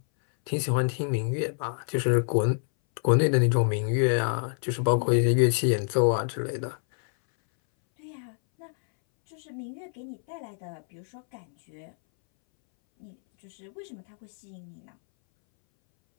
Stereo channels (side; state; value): right; silent; 60 dB below the other